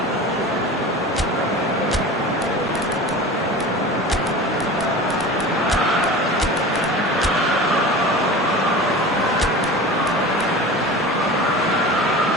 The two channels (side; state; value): both; normal; correlation 0.34